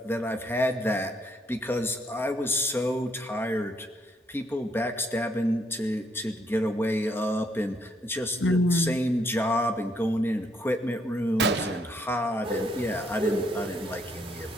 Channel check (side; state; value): both; normal; correlation 0.72